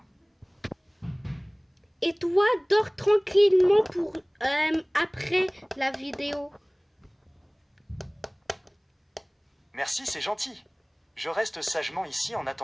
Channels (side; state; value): both; identical; correlation 1.00